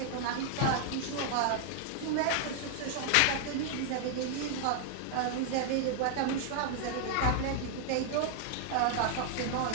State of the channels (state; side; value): different; both; correlation 0.00